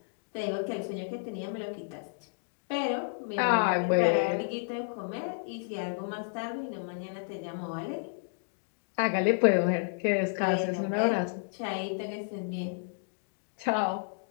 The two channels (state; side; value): silent; right; digital silence